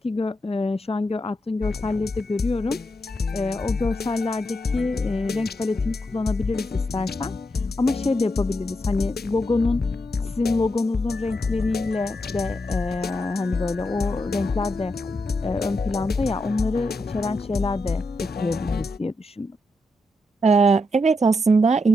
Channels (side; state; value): both; normal; correlation 0.83